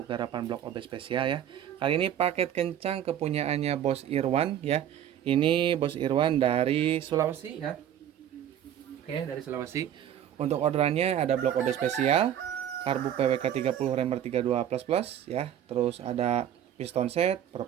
garapan blok OB spesial ya. Kali ini paket kencang kepunyaannya Bos Irwan ya. Ini Bos Irwan dari Sulawesi ya. Oke, dari Sulawesi. Untuk orderannya ada blok OB spesial, karbu PWK 30 remer 32 plus plus ya. Terus ada piston set,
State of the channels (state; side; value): quieter; left; 10.4 dB